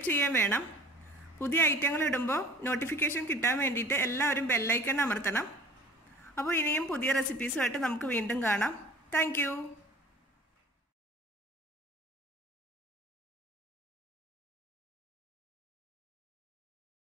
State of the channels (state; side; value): normal; both; correlation 0.46